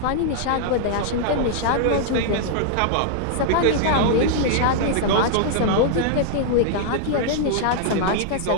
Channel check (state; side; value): different; both; correlation -0.01